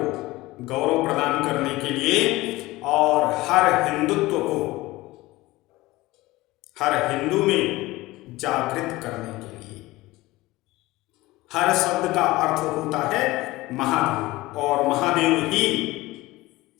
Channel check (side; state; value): right; quieter; 19.3 dB